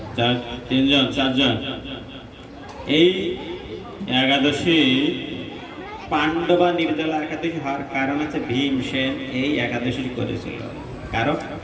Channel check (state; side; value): identical; both; correlation 1.00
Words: তিনজন চারজন। এই একাদশী পাণ্ডবা নির্জলা একাদশী হওয়ার কারণ আছে ভীমসেন এই একাদশী করেছিল। কারণ